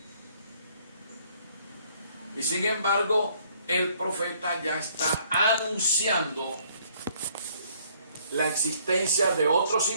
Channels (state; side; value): inverted; both; correlation -0.63